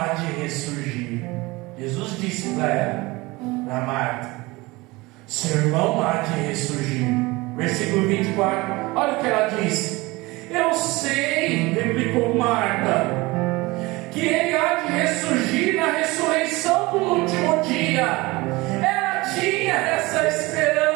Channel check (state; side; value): quieter; left; 22.4 dB